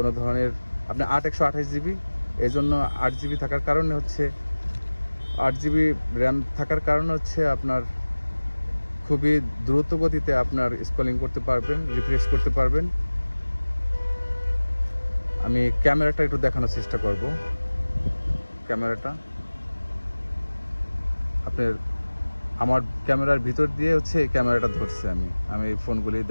ধরনের। আপনি 128GB, এই জন্য 8GB থাকার কারণে হচ্ছে 8GB র্যাম থাকার কারণে হচ্ছে আপনার খুবই দ্রুত গতিতে আপনার স্ক্রলিং করতে পারবেন, রিফ্রেশ করতে পারবেন। আমি ক্যামেরাটা একটু দেখানোর চেষ্টা করব। ক্যামেরাটা আপনার আমার ক্যামেরার ভিতর দিয়ে হচ্ছে এই ক্যামেরাটা ধরছে। আমি এই ফোনগুলি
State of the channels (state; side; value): inverted; both; correlation -1.00